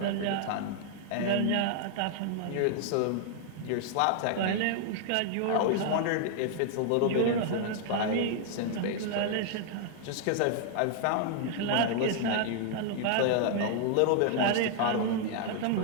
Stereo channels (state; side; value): different; both; correlation 0.00